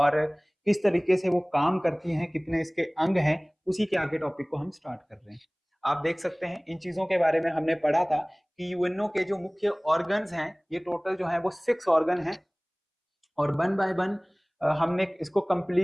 किस तरीके से वो काम करती हैं, कितने इसके अंग हैं। उसी के आगे टॉपिक को हम स्टार्ट कर रहे हैं। आप देख सकते हैं इन चीजों के बारे में हमने पढ़ा था कि यूएनओ के जो मुख्य ऑर्गन्स हैं, ये टोटल जो है वो 6 ऑर्गन हैं और वन बाय वन हमने इसको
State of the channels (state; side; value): identical; both; correlation 1.00